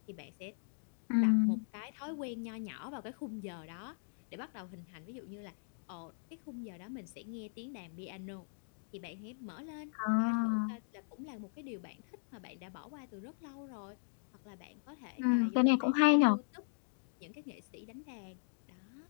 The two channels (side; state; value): right; silent; digital silence